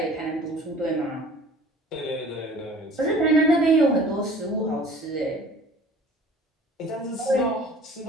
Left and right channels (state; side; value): normal; both; correlation 0.48